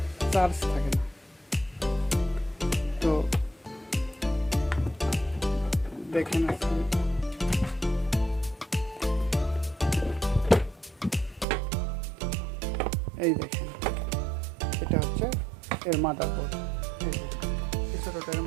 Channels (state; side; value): drops out; left; at 11.5 s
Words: চার্জ থাকে না। তো দেখেন আজকে এই দেখেন, এটা হচ্ছে এর মাদারবোর্ড। এই যে ছোটোটা এর